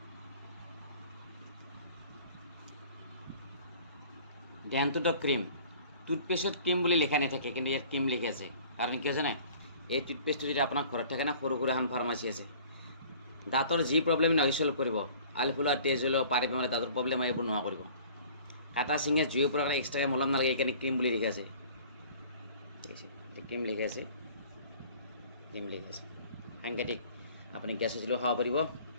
ডেণ্টো ডগ ক্ৰীম টুথপেষ্টত ক্ৰীম বুলি লিখা নাথাকে কিন্তু ইয়াত ক্ৰীম লিখি আছে কাৰণ কি হৈছে নাই এই টুথপেষ্টটো যদি আপোনাৰ ঘৰত থাকে না সৰু এখন ফাৰ্মাচী আছে দাঁতৰ যি প্ৰব্লেম নহয় চল্ভ কৰিব আলফুলা তেজ হ'লেও পাৰি পেলাই দাঁতৰ প্ৰব্লেম এইবোৰ নোহোৱা কৰিব কাটা চিঙে জুইৰ পৰা এক্সট্ৰাকৈ মলম নালাগে এইকাৰণে ক্ৰীম বুলি লিখি আছে ক্ৰীম লিখি আছে সাংঘাতিক আপুনি গেছ হৈছিলেও খাব পাৰিব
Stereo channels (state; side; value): inverted; both; correlation -0.49